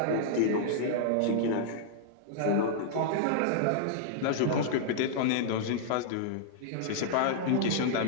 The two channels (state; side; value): different; both; correlation -0.01